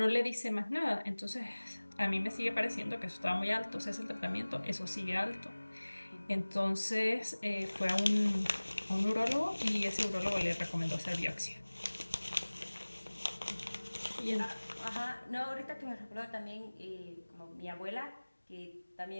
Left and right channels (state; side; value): inverted; both; correlation -1.00